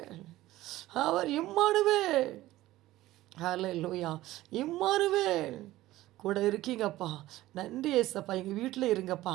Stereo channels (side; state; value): left; quieter; 16.2 dB